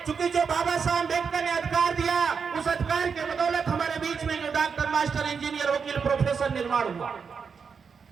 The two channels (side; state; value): left; quieter; 5.9 dB